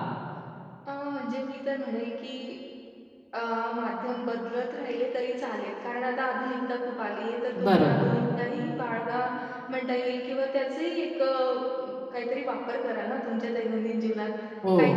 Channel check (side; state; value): both; identical; correlation 1.00